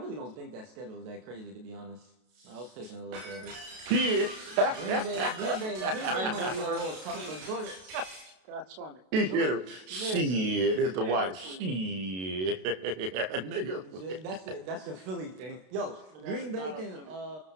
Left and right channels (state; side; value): late; left; 32 ms